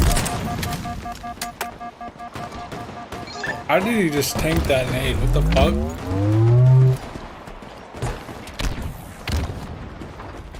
How did he just tank that nade? What the fuck?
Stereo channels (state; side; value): identical; both; correlation 1.00